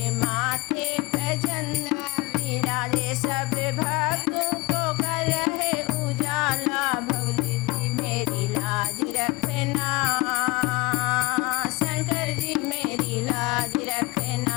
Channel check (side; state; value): right; quieter; 22.3 dB